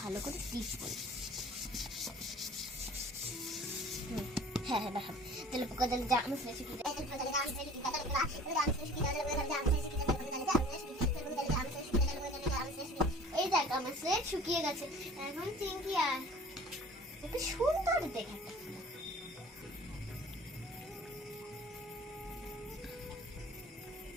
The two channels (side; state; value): both; normal; correlation 0.47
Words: ভালো করে স্টিচ করি হ্যাঁ হ্যাঁ দেখাবো জলে পোকা জলে যা আমার স্নেহ শিখিয়ে এই দেখ আমার স্লেট শুকিয়ে গেছে এখন চিংকি আর একটু সুন্দর দেখে একটা